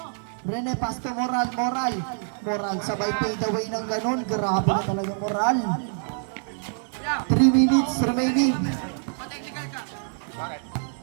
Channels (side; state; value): left; silent; 61 dB below the other